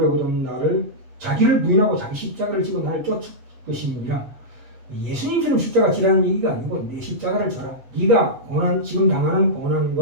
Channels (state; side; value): late; left; 7.8 ms